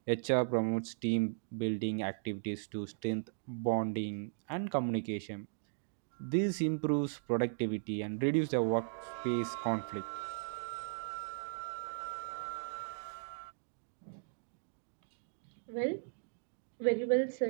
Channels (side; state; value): left; silent; digital silence